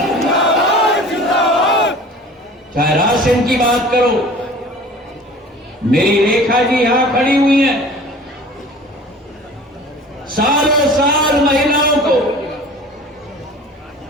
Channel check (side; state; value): both; normal; correlation 0.43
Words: चाहे राशन की बात करो, मेरी रेखा जी यहां खड़ी हुई हैं। सालों साल महिलाओं को